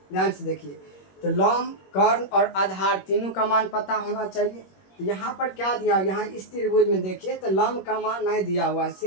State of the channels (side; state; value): right; late; 21 ms